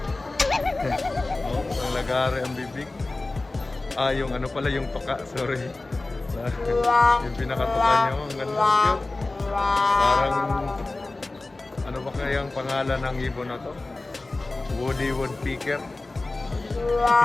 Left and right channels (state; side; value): quieter; right; 3.1 dB